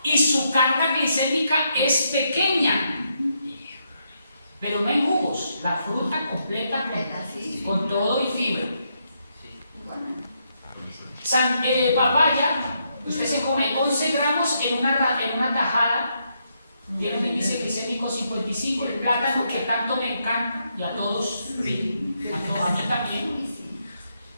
y su carga glicémica es pequeña. Pero no hay jugos, la fruta completa con todo y fibra. Papaya, usted se come 11 gramos en una tajada, tiene un índice glicémico 55. El plátano, que tanto me encanta, y a todos, a mí también,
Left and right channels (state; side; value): inverted; both; correlation -0.79